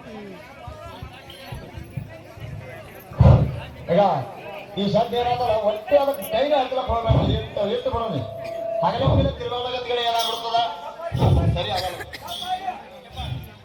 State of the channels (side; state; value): both; identical; correlation 1.00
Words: ಈಗ ಈ ಶಬ್ದ ಏನಾದ್ರೆ ಒಟ್ಟೆ ಅದಕ್ಕೆ ಕೈಗೆ ಹಾಕ್ಲಕ್ಕೆ ಹೋಗ್ಬೇಡ, ಇಟ್ಟು ಬಿಡೋಣ. ಹಗಲ ಮುಗಿದ ತಿರುಗಾಗತ್ಗಳು ಏನಾಗ್ಬಿಡ್ತದ, ಸರಿ ಆಗಲ್ಲ.